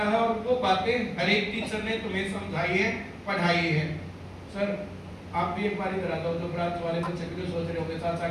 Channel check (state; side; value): identical; both; correlation 1.00